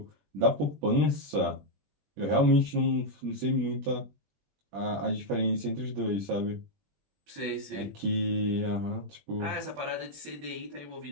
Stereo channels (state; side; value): late; left; 21 ms